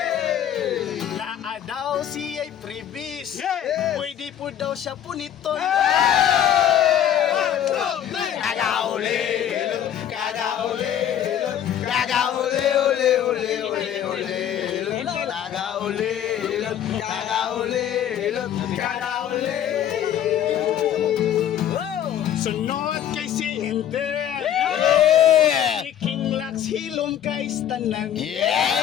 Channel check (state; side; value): quieter; right; 10.2 dB